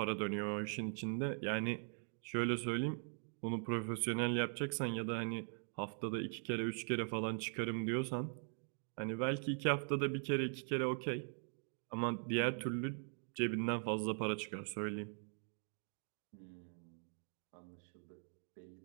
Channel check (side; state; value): left; silent; 50 dB below the other